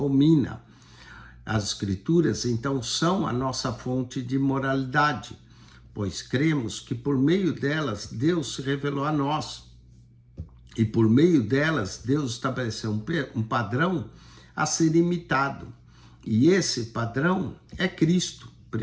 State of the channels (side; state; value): both; identical; correlation 1.00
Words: As Escrituras, então, são a nossa fonte de moralidade, pois cremos que por meio delas Deus se revelou a nós. E por meio delas Deus estabeleceu um padrão a ser imitado. E esse padrão é Cristo.